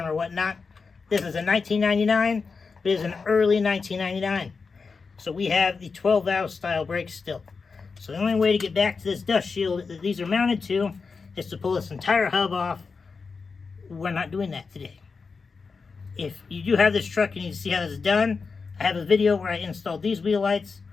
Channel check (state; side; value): quieter; right; 4.8 dB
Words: or whatnot. This is a 1999, but it is an early 1999. So we have the 12-valve style brakes still. So the only way to get back to this dust shield that these are mounted to is to pull this entire hub off. We're not doing that today. If you do have this truck and you need to see how this is done, I have a video where I installed these wheel lights.